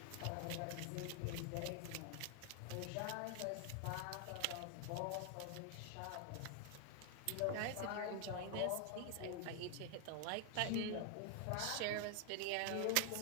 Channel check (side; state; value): both; different; correlation 0.00